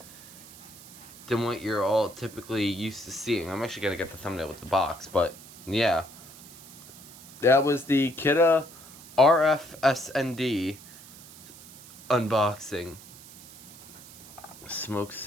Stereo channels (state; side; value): noise; right; hiss, 18 dB below the sound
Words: than what you're all typically used to seeing. I'm actually gonna get the thumbnail with the box, but yeah, that was the Kidde RF-SND unboxing. Smoke